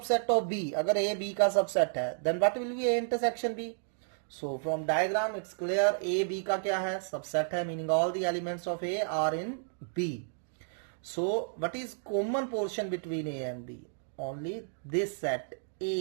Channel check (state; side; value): silent; left; digital silence